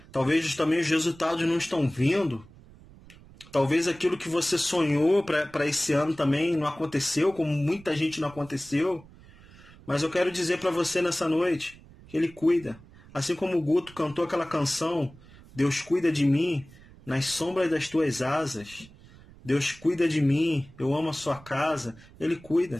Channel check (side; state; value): right; noise; rumble, 22 dB below the sound